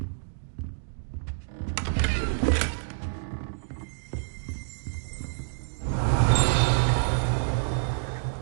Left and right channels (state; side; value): silent; left; digital silence